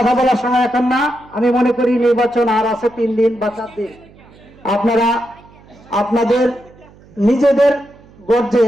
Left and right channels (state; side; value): noise; right; hum, 25 dB below the sound